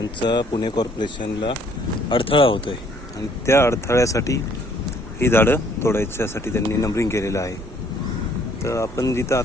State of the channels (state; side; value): normal; both; correlation 0.62